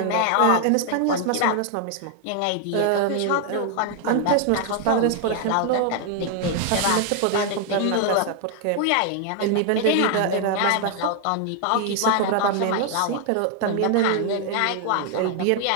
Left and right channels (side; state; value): both; different; correlation 0.00